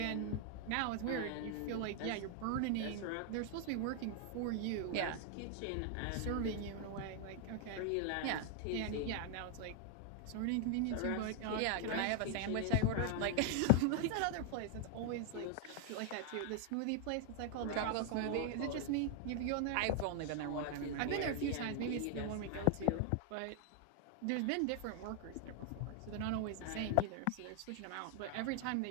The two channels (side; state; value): both; different; correlation 0.00